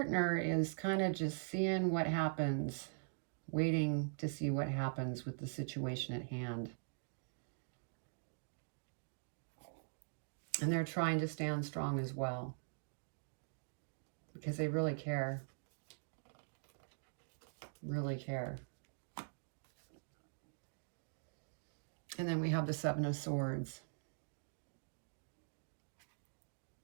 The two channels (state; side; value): silent; left; digital silence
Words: is kind of just seeing what happens, waiting to see what happens with the situation at hand. And they're trying to stand strong as well, because they really care. Really care. And then we have the Seven of Swords.